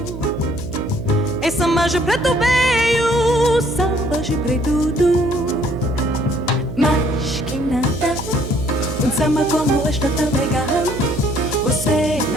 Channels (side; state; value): right; noise; hum, 9 dB below the sound